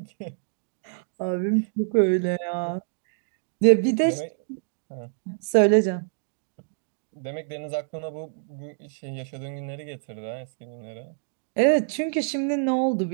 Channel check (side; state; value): left; silent; digital silence